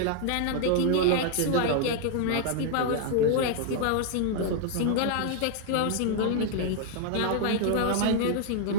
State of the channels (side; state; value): both; different; correlation 0.00